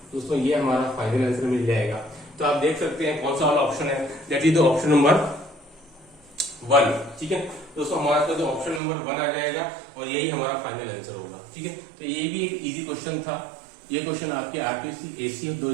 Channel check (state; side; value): drops out; left; at 8.8 s